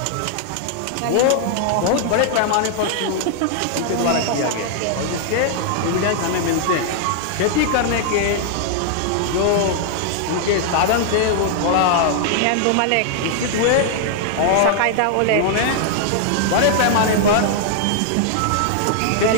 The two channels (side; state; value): both; different; correlation 0.00